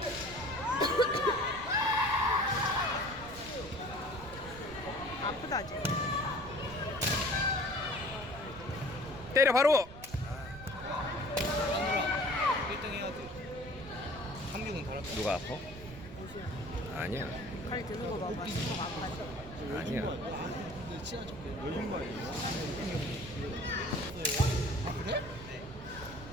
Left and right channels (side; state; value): right; noise; rumble, 15 dB below the sound